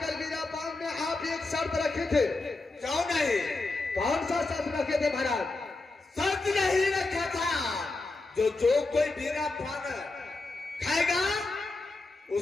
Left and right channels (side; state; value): right; quieter; 3.3 dB